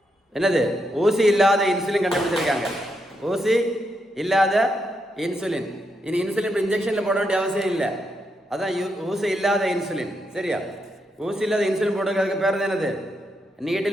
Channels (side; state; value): both; normal; correlation 0.81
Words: என்னது? ஊசி இல்லாத இன்சுலின் கண்டுபிடிச்சிருக்காங்க. ஊசி இல்லாத இன்சுலின். இனி இன்சுலின் இன்ஜெக்ஷனில் போட வேண்டிய அவசியம் இல்லை. அதான் ஊசி இல்லாத இன்சுலின். சரியா? ஊசி இல்லாத இன்சுலின் போடுறதுக்கு பேர் என்னது?